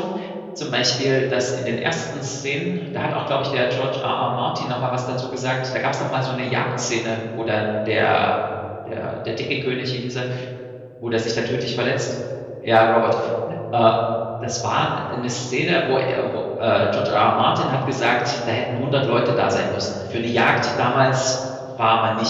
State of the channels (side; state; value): both; identical; correlation 1.00